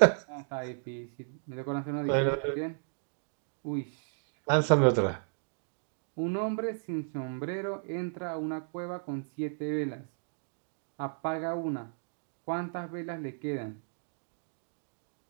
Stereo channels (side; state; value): left; silent; digital silence